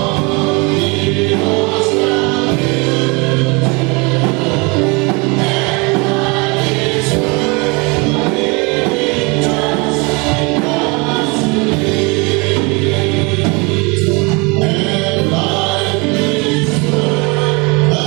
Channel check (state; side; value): quieter; left; 28.6 dB